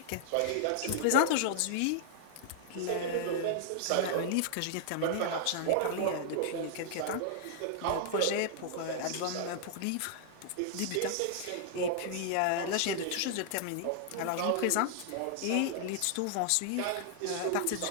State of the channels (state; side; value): different; both; correlation -0.01